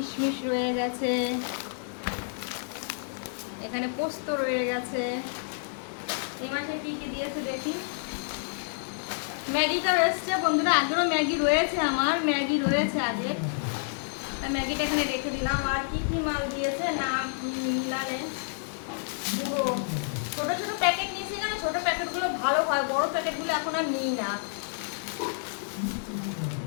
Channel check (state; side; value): silent; right; digital silence